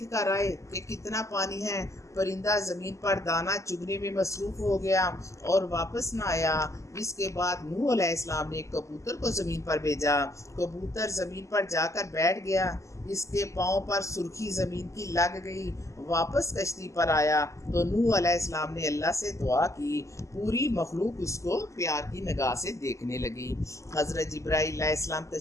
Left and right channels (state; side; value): late; right; 0.15 ms